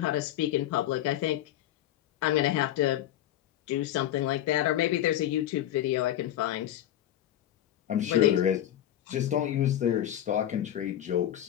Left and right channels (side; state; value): right; quieter; 12.1 dB